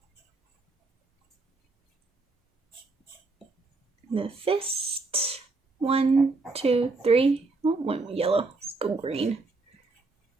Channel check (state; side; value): quieter; left; 3.6 dB